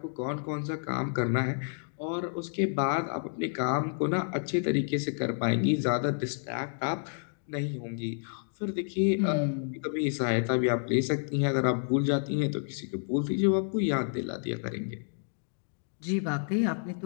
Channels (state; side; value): silent; right; digital silence